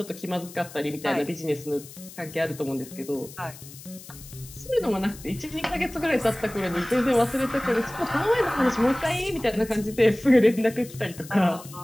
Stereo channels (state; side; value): noise; left; hiss, 17 dB below the sound